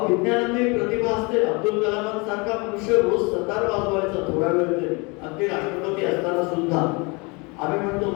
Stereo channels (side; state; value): right; quieter; 28.7 dB